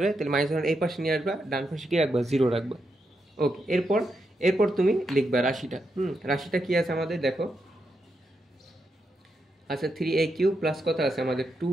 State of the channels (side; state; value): both; normal; correlation 0.84